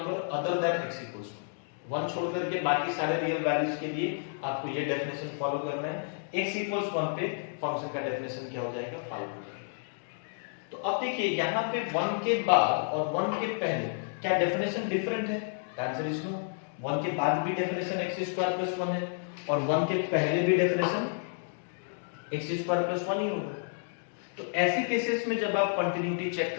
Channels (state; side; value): silent; right; digital silence